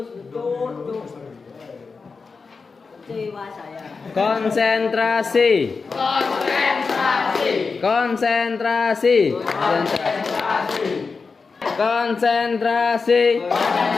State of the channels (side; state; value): right; quieter; 4.7 dB